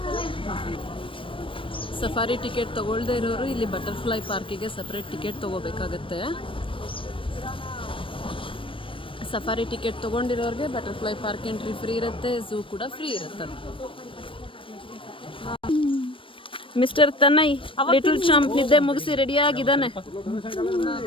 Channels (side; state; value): right; late; 0.25 ms